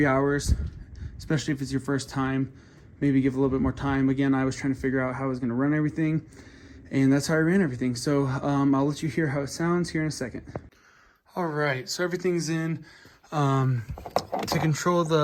hours, especially if it's your first time. Maybe give a little bit more time. Again, I was trying to figure out how I was going to run everything, and that's how I ran everything. So I'll let you hear how it sounds here in a second. All right, so everything's in. To control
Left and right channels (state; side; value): identical; both; correlation 1.00